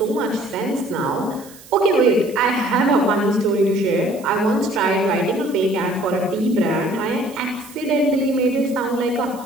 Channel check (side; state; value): right; noise; hiss, 21 dB below the sound